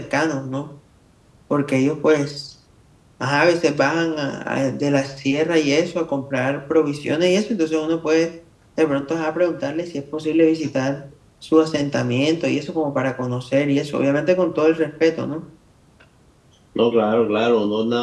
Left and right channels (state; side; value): identical; both; correlation 1.00